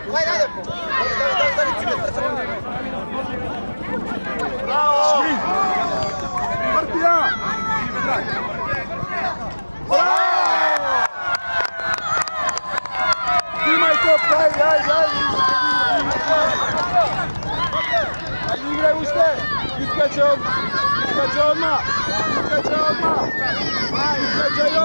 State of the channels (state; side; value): inverted; both; correlation -1.00